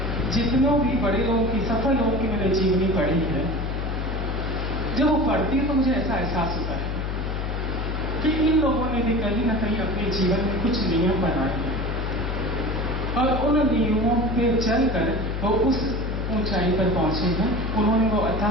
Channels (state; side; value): noise; left; hum, 2 dB below the sound